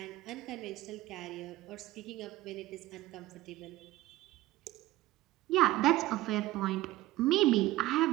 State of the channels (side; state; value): left; quieter; 17.0 dB